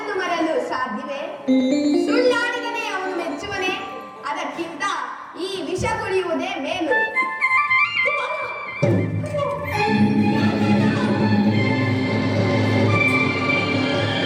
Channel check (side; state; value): both; identical; correlation 1.00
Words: ಮರಲು ಸಾಧ್ಯವೇ? ಸುಳ್ಳಾಡಿದನೇ ಅವನು ಮೆಚ್ಚುವನೇ? ಅದಕ್ಕಿಂತ ಈ ವಿಷ ಕುಡಿಯುವುದೇ ಮೇಲು.